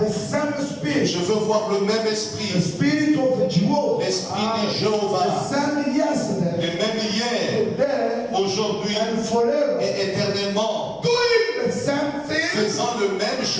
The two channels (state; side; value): identical; both; correlation 1.00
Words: same spirit. Je veux voir le même The esprit. spirit of Jehovah. L'esprit de The Jéhovah. same yesterday, Le même hier, today, aujourd'hui and forever. et éternellement. Doing the same thing. Faisant le même